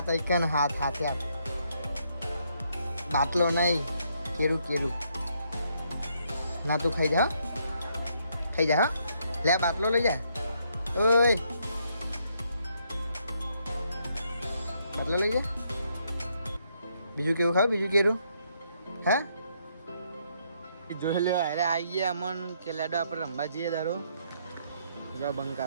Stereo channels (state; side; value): inverted; both; correlation -0.73